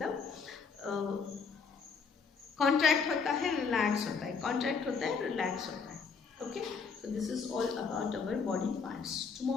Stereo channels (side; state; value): right; quieter; 5.4 dB